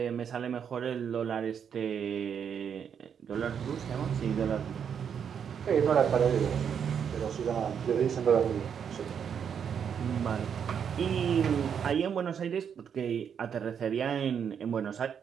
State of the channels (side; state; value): left; quieter; 7.7 dB